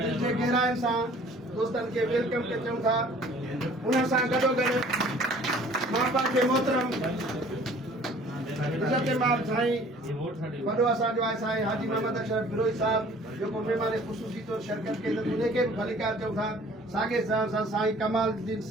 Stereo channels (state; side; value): normal; both; correlation 0.52